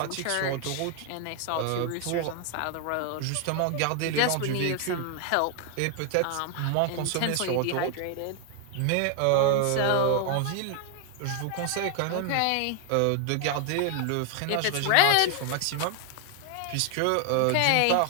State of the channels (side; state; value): both; different; correlation 0.00